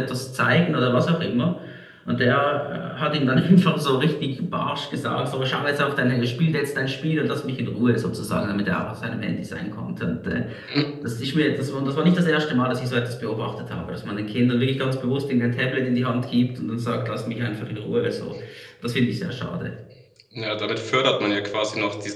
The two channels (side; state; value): both; identical; correlation 1.00